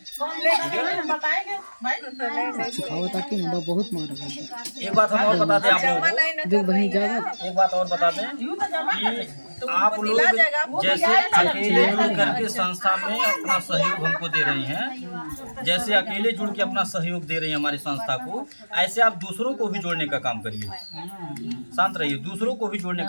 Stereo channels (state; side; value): inverted; both; correlation -1.00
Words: एक बात हम और बता दें आप लोगों को, एक बात और बता दें कि आप लोग जैसे अकेले जुड़ करके संस्था में अपना सहयोग हमको दे रही हैं, जैसे अकेले जुड़ के अपना सहयोग दे रही हैं हमारी संस्था को, ऐसे आप दूसरों को भी जोड़ने का काम करिए। शांत रहिए, दूसरों को भी जोड़ने